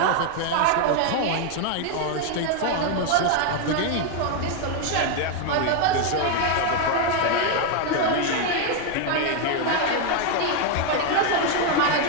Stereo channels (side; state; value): both; different; correlation 0.01